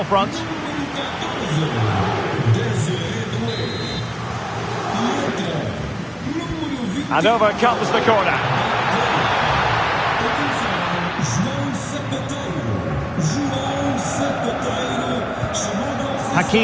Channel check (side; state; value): both; identical; correlation 1.00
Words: front. And over comes the corner.